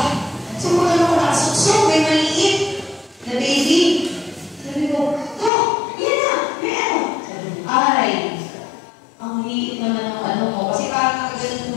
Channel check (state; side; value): drops out; right; at 5.5 s